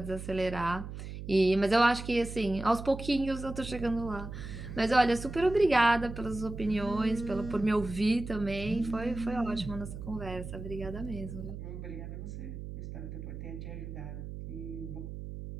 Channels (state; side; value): noise; right; hum, 9 dB below the sound